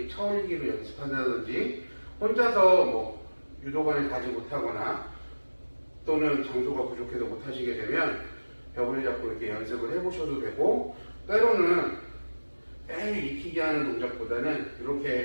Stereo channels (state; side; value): inverted; both; correlation -1.00